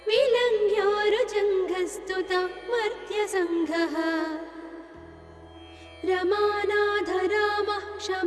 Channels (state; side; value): identical; both; correlation 1.00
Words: विलङ्घ्योरुजङ्घस्तुता मर्त्यसङ्घः रमानाथ रामः